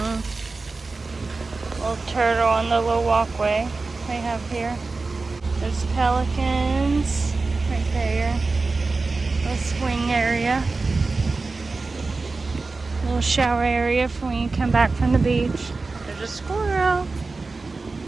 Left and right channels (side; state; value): left; quieter; 3.8 dB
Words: Little turtle on the little walkway they have here. There's pelicans right there. Little swing area. Little shower area for when you come back from the beach. There's a squirrel.